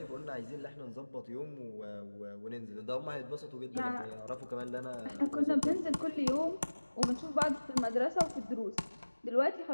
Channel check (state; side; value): inverted; both; correlation -1.00